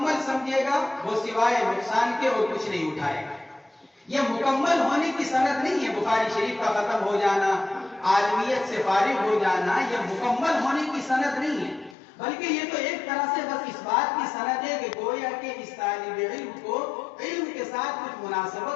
سمجھے گا وہ سوائے نقصان کے اور کچھ نہیں اٹھائے گا۔ یہ مکمل ہونے کی سند نہیں ہے، بخاری شریف کا ختم ہو جانا، عالمیت سے فارغ ہو جانا، یہ مکمل ہونے کی سند نہیں ہے، بلکہ یہ تو ایک طرح سے بس اس بات کی سند ہے کہ گویا کہ اس طالب علم کو علم کے ساتھ کچھ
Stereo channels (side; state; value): right; drops out; at 12.0 s